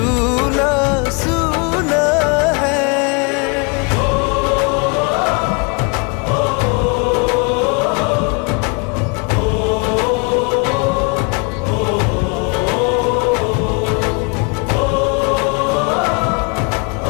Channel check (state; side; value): quieter; right; 32.5 dB